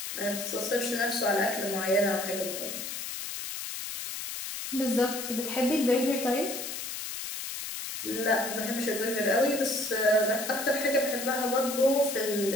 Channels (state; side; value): noise; left; hiss, 6 dB below the sound